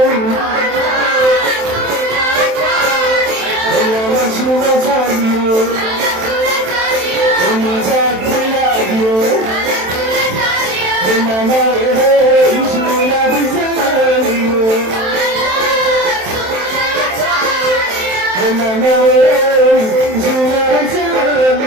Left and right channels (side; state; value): left; late; 27 ms